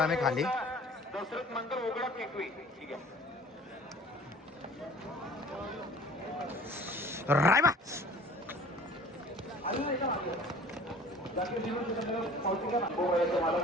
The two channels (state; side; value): normal; both; correlation 0.47